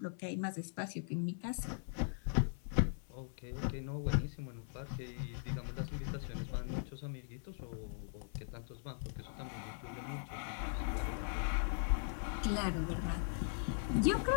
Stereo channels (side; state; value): right; silent; 51 dB below the other